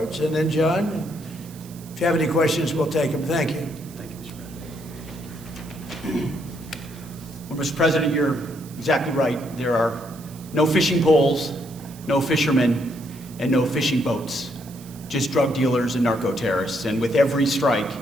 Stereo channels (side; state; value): right; noise; hiss, 21 dB below the sound